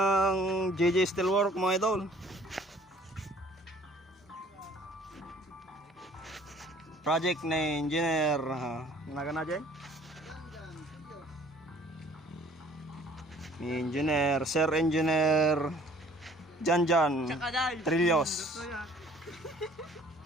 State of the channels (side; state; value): both; normal; correlation 0.55